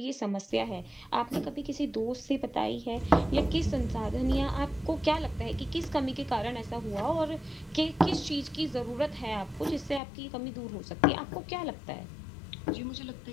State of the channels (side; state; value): right; drops out; at 10.0 s